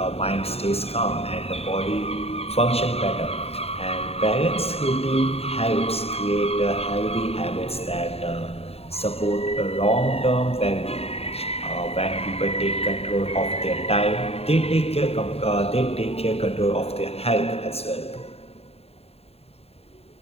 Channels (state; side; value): late; right; 0.29 ms